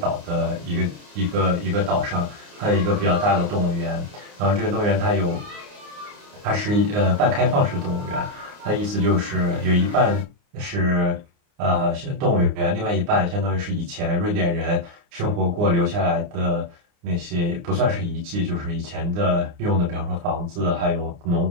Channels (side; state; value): left; late; 29 ms